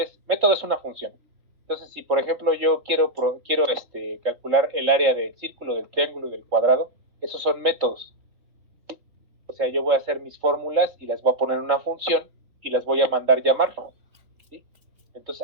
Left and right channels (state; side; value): late; left; 3.4 ms